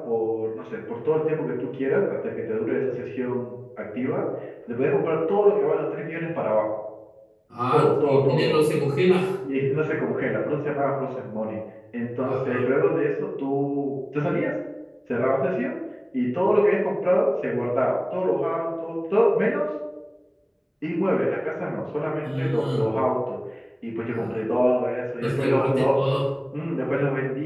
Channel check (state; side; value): identical; both; correlation 1.00